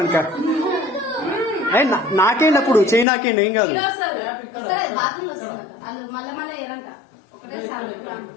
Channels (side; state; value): right; drops out; at 3.1 s